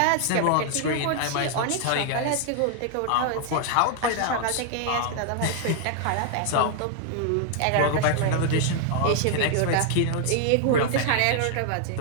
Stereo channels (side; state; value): both; different; correlation 0.00